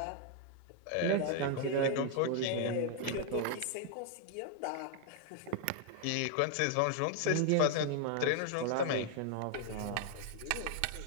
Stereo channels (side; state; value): both; different; correlation 0.00